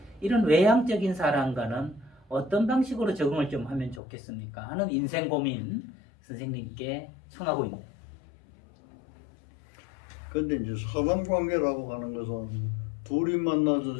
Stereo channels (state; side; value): drops out; right; at 4.0 s